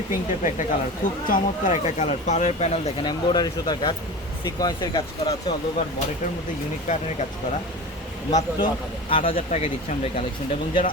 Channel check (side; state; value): both; normal; correlation 0.31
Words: পিঙ্ক টাইপের একটা কালার, খুব চমৎকার একটা কালার। পাড়ের প্যানেল দেখেন এমব্রয়ডারি সুতার কাজ, সিকোয়েন্সের কাজ করা আছে, অল ওভার বডিটার মধ্যে ইউনিক প্যাটার্নের কাজ করা। মাত্র 8,000 টাকায় দিচ্ছি আমরা এই কালেকশনটা। এবং যারা